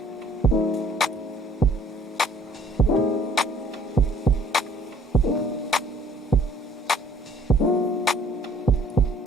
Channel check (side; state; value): both; normal; correlation 0.57